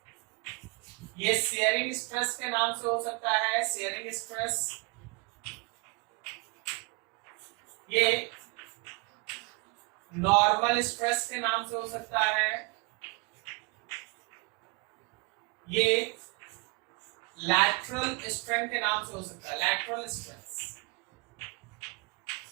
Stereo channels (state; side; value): quieter; left; 29.3 dB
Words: ये शेयरिंग स्ट्रेस के नाम से हो सकता है, शेयरिंग स्ट्रेस, ये नॉर्मल स्ट्रेस के नाम से हो सकता है, ये लैटरल स्ट्रेन के नाम से हो सकता है, लैटरल स्ट्रेस,